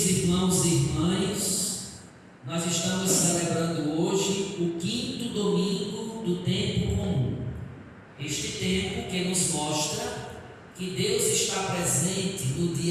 irmãos e irmãs, nós estamos celebrando hoje o 5º domingo do tempo comum. Este tempo que nos mostra que Deus está presente no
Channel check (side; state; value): both; identical; correlation 1.00